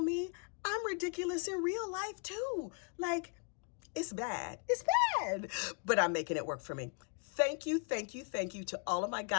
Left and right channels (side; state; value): right; quieter; 39.3 dB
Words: me. I'm ridiculous in real life too. Like, it's bad. It's bad. But I'm making it work for me. Thank you, thank you, thank you to all of my